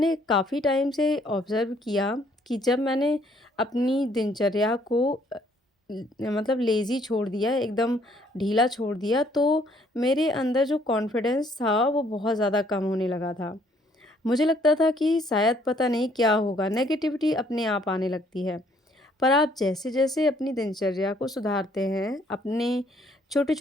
काफ़ी टाइम से ऑब्ज़र्व किया कि जब मैंने अपनी दिनचर्या को मतलब लेज़ी छोड़ दिया, एकदम ढीला छोड़ दिया, तो मेरे अंदर जो कॉन्फिडेंस था, वो बहुत ज़्यादा कम होने लगा था। मुझे लगता था कि शायद पता नहीं क्या होगा, नेगेटिविटी अपने आप आने लगती है। पर आप जैसे-जैसे अपनी दिनचर्या को सुधारते हैं, अपने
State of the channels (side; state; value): both; normal; correlation 0.64